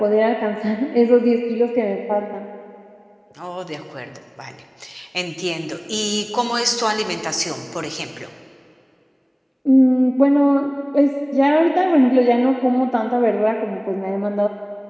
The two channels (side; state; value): both; identical; correlation 1.00